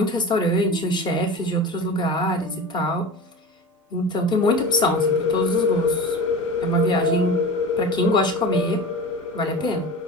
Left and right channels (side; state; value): both; normal; correlation 0.32